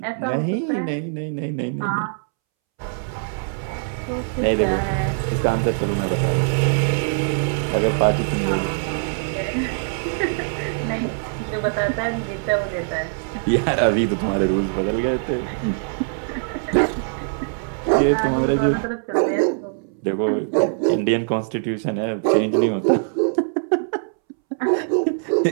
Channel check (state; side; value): silent; left; 64 dB below the other